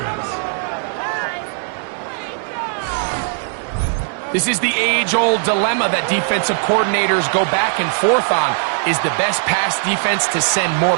This is the age-old dilemma that defensive coordinators go back and forth on. Is the best pass defense to send more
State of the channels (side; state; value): left; silent; 67 dB below the other